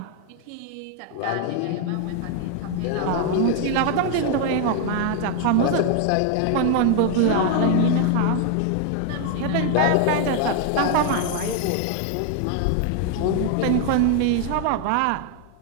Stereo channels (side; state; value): both; different; correlation 0.00